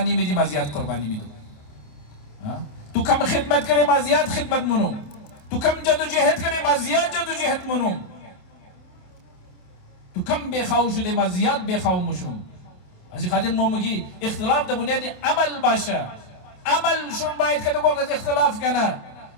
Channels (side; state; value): right; late; 28 ms